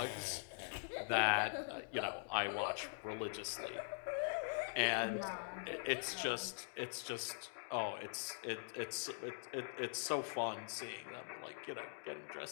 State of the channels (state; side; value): silent; right; digital silence